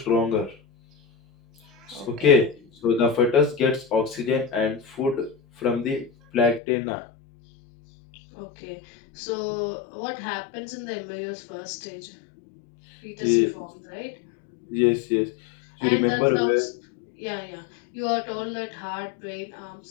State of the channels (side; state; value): right; drops out; at 6.6 s